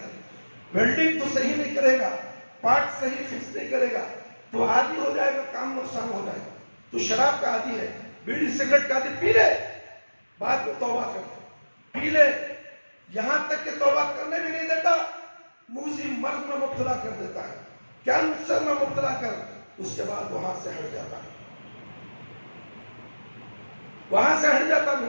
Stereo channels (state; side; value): inverted; both; correlation -1.00